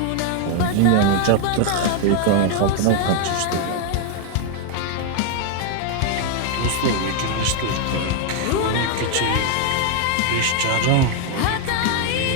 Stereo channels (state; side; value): different; both; correlation 0.00